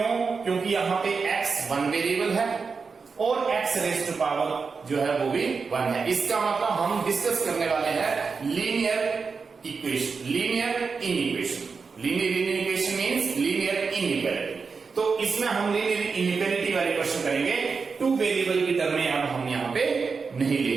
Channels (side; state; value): left; quieter; 5.0 dB